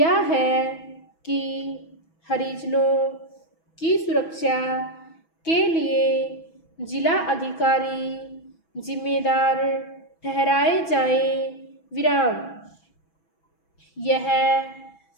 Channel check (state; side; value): late; right; 6.1 ms